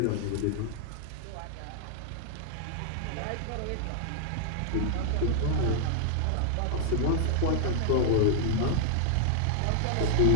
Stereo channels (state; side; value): different; both; correlation -0.01